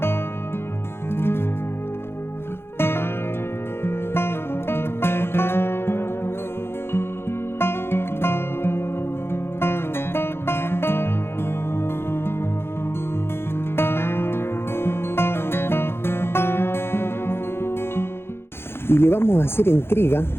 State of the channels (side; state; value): right; late; 0.11 ms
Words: Y le vamos a hacer entrega